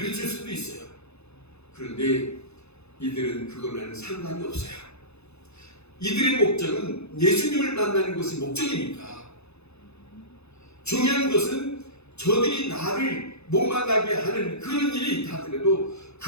수도 있어요. 그런데 이들은 그거는 상관이 없어요. 이들의 목적은 예수님을 만나는 것이 목적이니까 중요한 것은 저들이 나를 못 만나게 하는 그런 일이 있다 하더라도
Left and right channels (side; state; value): right; late; 0.80 ms